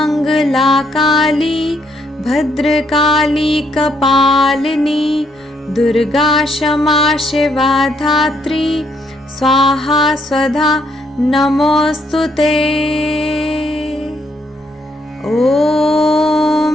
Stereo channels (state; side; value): normal; both; correlation 0.73